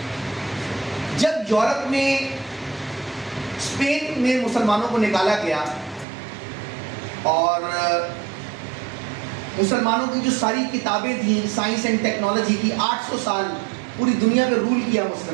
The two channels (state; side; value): drops out; left; at 6.1 s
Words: جب یورپ میں اسپین میں مسلمانوں کو نکالا گیا اور مسلمانوں کی جو ساری کتابیں تھیں سائنس اینڈ ٹیکنالوجی کی, 800 سال پوری دنیا میں رول کیا